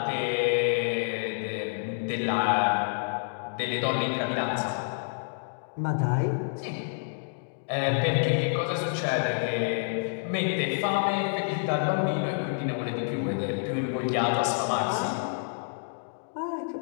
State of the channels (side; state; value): right; silent; digital silence